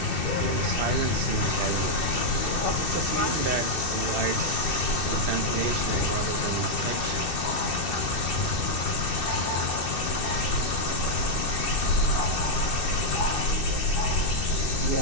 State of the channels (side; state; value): right; late; 2.6 ms